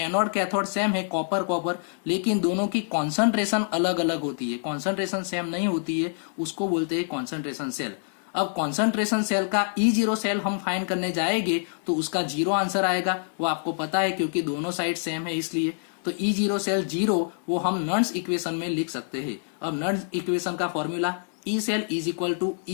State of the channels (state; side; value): silent; right; digital silence